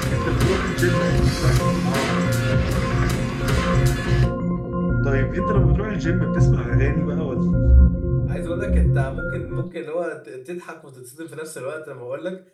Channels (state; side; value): identical; both; correlation 1.00